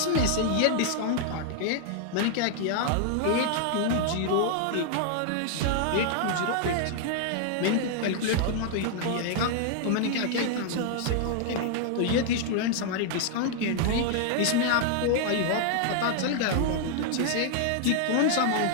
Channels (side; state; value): both; different; correlation -0.01